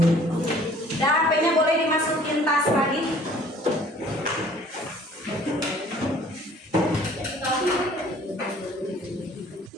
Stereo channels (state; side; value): normal; both; correlation 0.54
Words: HP-nya boleh dimasukin tas lagi.